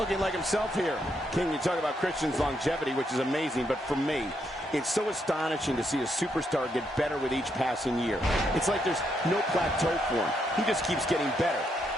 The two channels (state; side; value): normal; both; correlation 0.77